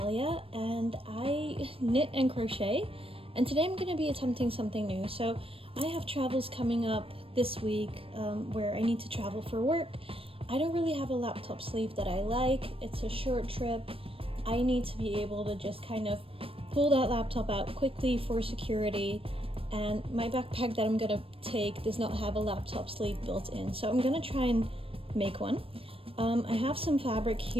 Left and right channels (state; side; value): late; left; 0.27 ms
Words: and I knit and crochet, and today I'm going to be attempting something new. So I have travels coming up this week where I need to travel for work. I don't really have a laptop sleeve that I like. It's a short trip. I need to be able to just kind of pull that laptop out quickly for security, and my backpack that I'm going to take does not have a laptop sleeve built in, so I'm going to try and make one. I have some fabric